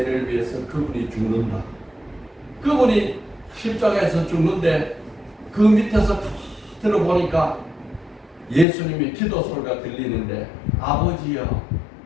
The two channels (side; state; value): right; drops out; at 8.7 s